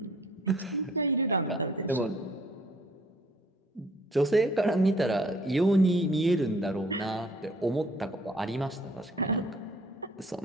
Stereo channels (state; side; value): normal; both; correlation 0.58